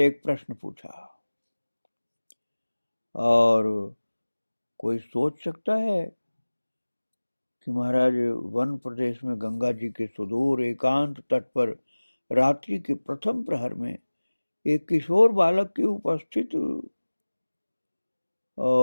एक प्रश्न पूछा। और कोई सोच सकता है कि महाराज वन प्रदेश में गंगा जी के सुदूर एकांत तट पर रात्रि के प्रथम प्रहर में एक किशोर बालक की उपस्थित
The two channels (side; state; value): both; inverted; correlation -1.00